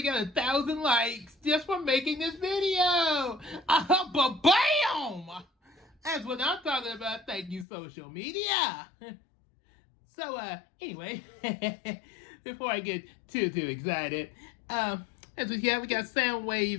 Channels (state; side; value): drops out; right; at 7.7 s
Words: got 1,000 likes just for making this video. But bam! That's what I'm talking about. Thank you, social media. So, anyway, before I get too excited, as we got